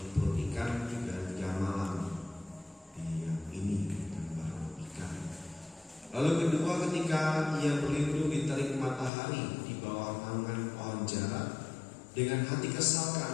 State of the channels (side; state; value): right; drops out; at 9.1 s